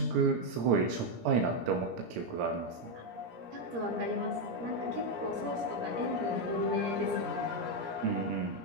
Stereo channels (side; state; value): left; late; 17 ms